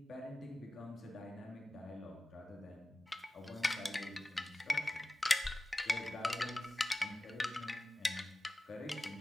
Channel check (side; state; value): both; normal; correlation 0.96